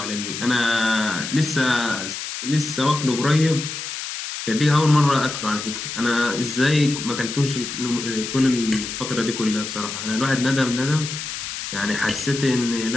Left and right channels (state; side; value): noise; left; hiss, 6 dB below the sound